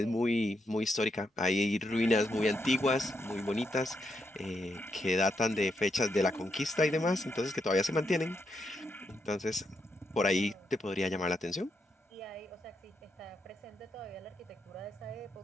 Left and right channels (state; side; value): normal; both; correlation 0.81